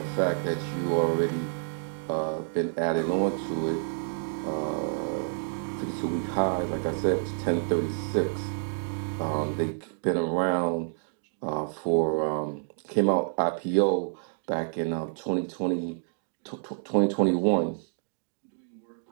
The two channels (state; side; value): silent; left; digital silence